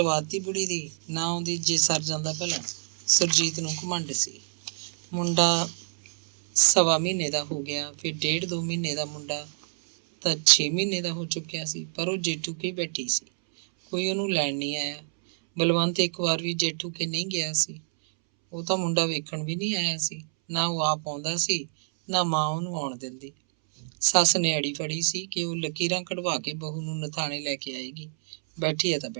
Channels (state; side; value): silent; left; 60 dB below the other